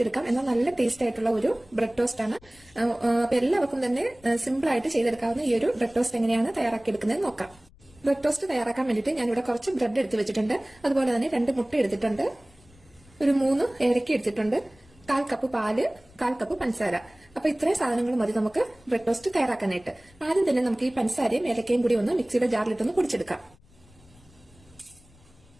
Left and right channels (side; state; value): left; noise; rumble, 28 dB below the sound